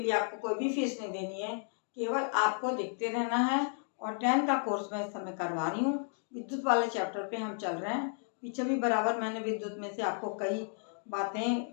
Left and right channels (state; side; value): silent; right; 56 dB below the other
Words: लिए आपको कोई भी फीस नहीं देनी है, केवल आपको देखते रहना है। और 10 का कोर्स मैं इस समय करवा रही हूँ। विद्युत वाले चैप्टर पे हम चल रहे हैं। पीछे भी बराबर मैंने विद्युत में से आपको कई